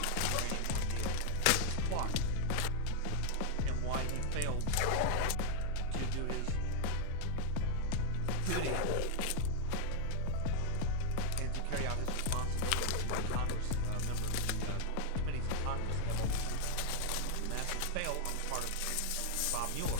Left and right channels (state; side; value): different; both; correlation 0.00